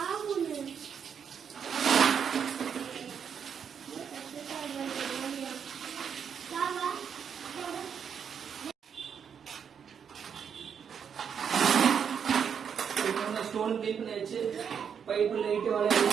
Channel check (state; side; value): quieter; left; 7.4 dB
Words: ஸ்டோன் க்ளீன் பண்ணியாச்சு. பைப்பு லைட்டு